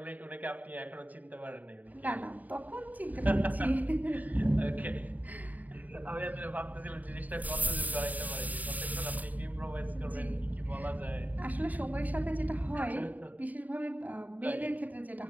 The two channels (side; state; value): left; late; 0.078 ms